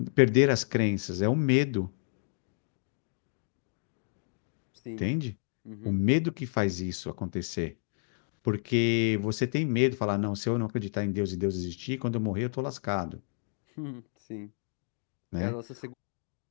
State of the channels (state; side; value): silent; right; digital silence